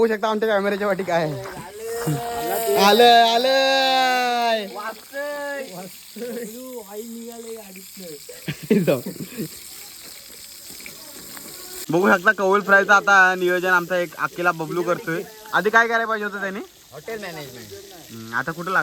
शकता आमच्या कॅमेऱ्याच्या वाटी काय आहे. आलंय बघू शकता कौल फ्रायचं आता नियोजन आमचा एक अकेला बबलू करतोय. आधी काय करायला पाहिजे होतं त्यांनी हॉटेल मॅनेजमेंट. आता कुठं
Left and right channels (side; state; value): both; identical; correlation 1.00